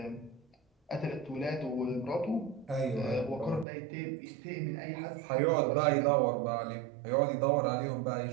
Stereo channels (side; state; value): left; drops out; at 3.7 s